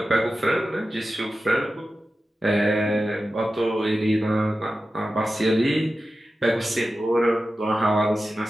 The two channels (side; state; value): both; normal; correlation 0.93